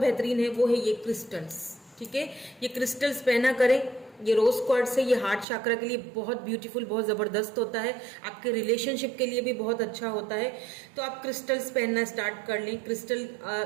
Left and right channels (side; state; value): left; drops out; at 5.5 s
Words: है, वो है ये क्रिस्टल्स, ठीक है। ये क्रिस्टल्स पहना करें, ये रोज क्वार्ट्ज है, ये हार्ट चाक्रा के लिए बहुत ब्यूटीफुल, बहुत जबरदस्त होता है, आपके रिलेशनशिप के लिए भी बहुत अच्छा होता है। तो आप क्रिस्टल्स पहनना स्टार्ट कर लें। क्रिस्टल